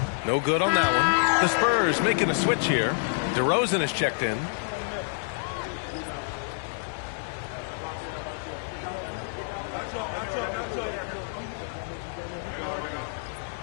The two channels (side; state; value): right; silent; digital silence